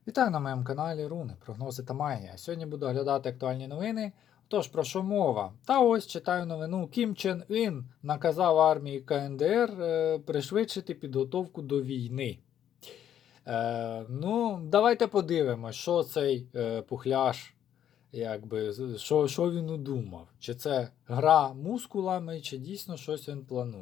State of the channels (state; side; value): quieter; right; 10.2 dB